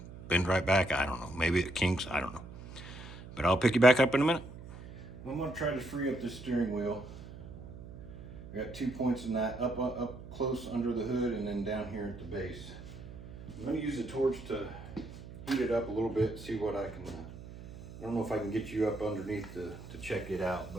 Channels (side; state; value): right; noise; hum, 14 dB below the sound